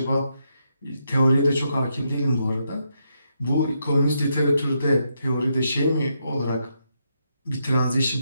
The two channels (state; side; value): inverted; both; correlation -0.80